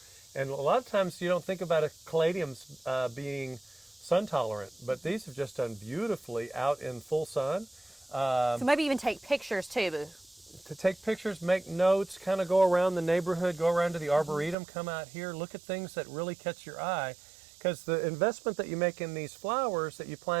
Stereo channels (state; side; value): drops out; left; at 14.6 s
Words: And a lot of times you don't think about caladiums being sun tolerant, but these have just done beautifully out in full sun. So maybe even take pictures too. To take pictures, make notes, kind of go around the neighborhood, go around to the Arboretum, come out here, look at things that really catch your eye. Because the investment that you make in these flowers that you